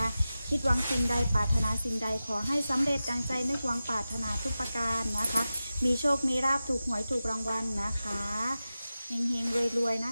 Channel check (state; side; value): inverted; both; correlation -0.94